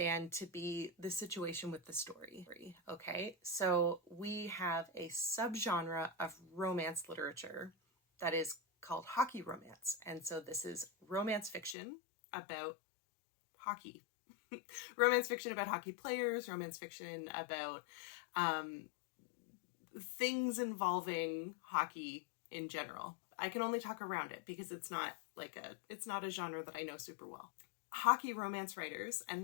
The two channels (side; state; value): right; drops out; at 11.8 s